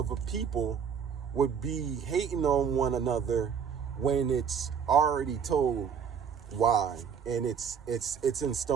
people would be hating on one another when it's already told why, and it's in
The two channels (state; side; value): quieter; left; 7.1 dB